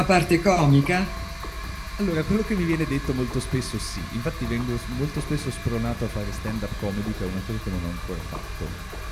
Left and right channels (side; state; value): both; identical; correlation 1.00